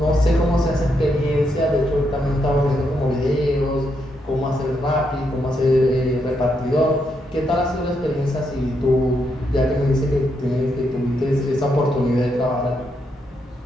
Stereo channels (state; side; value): normal; both; correlation 0.80